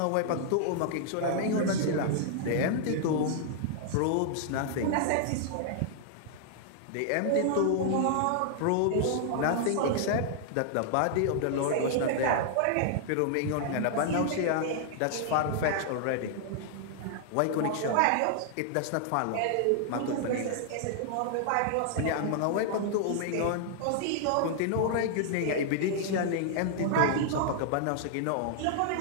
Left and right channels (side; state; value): both; different; correlation -0.01